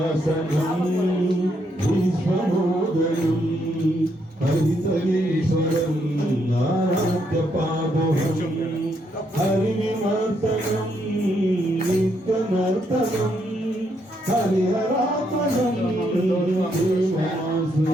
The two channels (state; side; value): normal; both; correlation 0.76